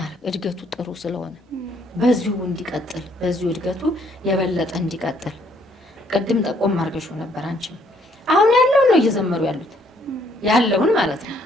እድገቱ ጥሩ ስለሆነ በዚሁ እንዲቀጥል በዚሁ እድገቱ የበለጠ እንዲቀጥል ቅድም ጠቆም አድርገሽው ነበር አንቺም። አሁን ያለውን ነው እየዘመሩ ያሉት ያለውን ማለት ነው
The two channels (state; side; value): normal; both; correlation 0.67